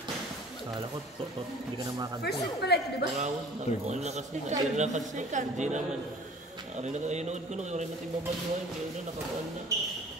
Kala ko, hindi ka na makakanta. First set pala ito, di ba? Marawon, ano na kasi, hindi na kasi, hindi naman. Ari na kayo nood ko nung yung natin babaluhan, kaya na nakakuan na.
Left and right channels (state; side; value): normal; both; correlation 0.48